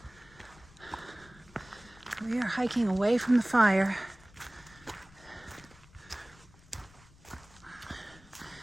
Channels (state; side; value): noise; left; rumble, 24 dB below the sound